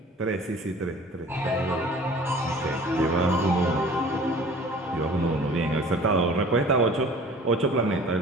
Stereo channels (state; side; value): normal; both; correlation 0.47